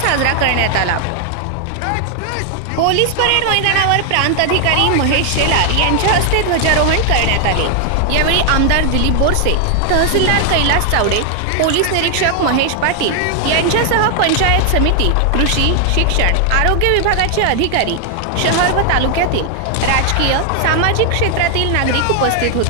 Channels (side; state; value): both; different; correlation 0.00